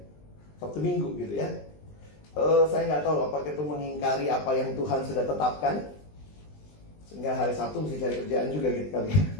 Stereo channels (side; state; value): right; late; 20 ms